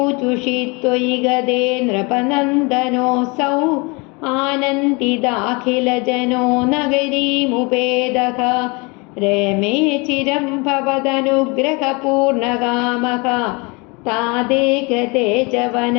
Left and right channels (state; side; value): quieter; right; 28.3 dB